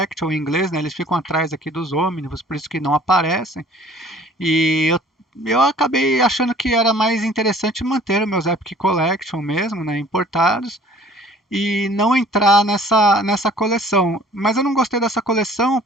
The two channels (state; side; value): normal; both; correlation 0.52